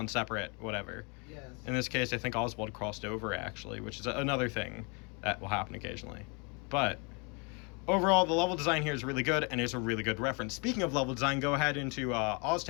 separate, whatever. Yes. In this case, I think Oswald crossed over actually, which is another thing that will happen occasionally. But overall, the level design here is really good and is a really good reference. Speaking of level design, go ahead into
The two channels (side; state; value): right; quieter; 32.8 dB